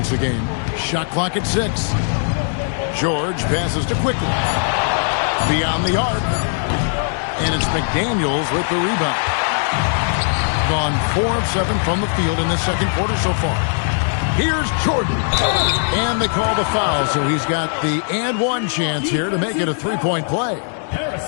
a game. Shot clock at 6. George passes to Quickly. Beyond the arc. And it's McDaniels with the rebound. Gone 4 of 7 from the field in the second quarter so far. Here's Jordan. And they call the foul, so he's got the and one chance here to make it a 3-point play.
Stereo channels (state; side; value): silent; right; digital silence